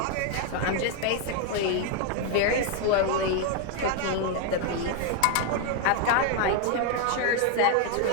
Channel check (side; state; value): both; different; correlation 0.01